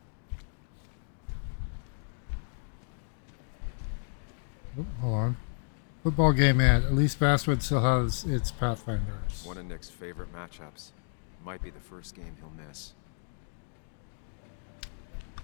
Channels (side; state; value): right; silent; digital silence